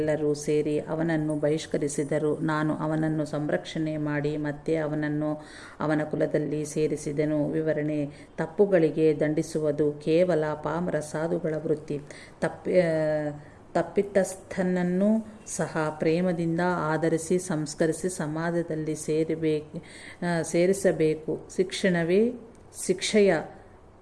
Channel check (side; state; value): both; identical; correlation 1.00